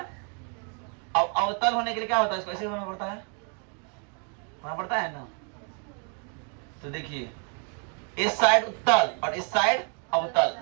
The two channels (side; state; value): left; quieter; 39.8 dB